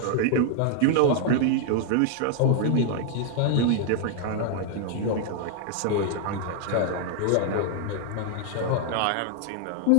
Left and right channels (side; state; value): both; different; correlation 0.00